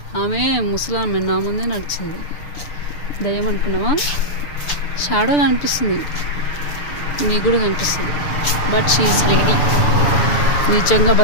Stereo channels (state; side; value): late; right; 6.8 ms